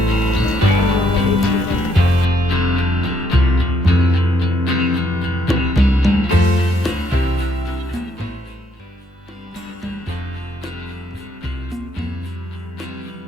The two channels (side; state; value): both; normal; correlation 0.71